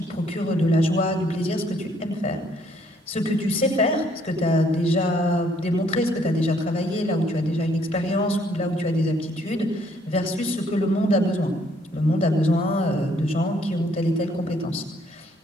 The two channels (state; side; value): normal; both; correlation 0.66